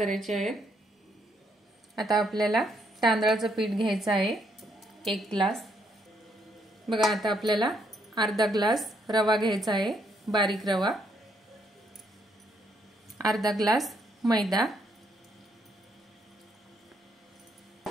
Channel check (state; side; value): normal; both; correlation 0.73